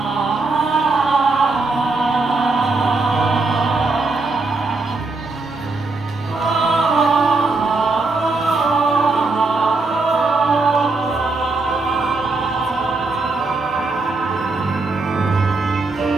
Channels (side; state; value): left; quieter; 3.5 dB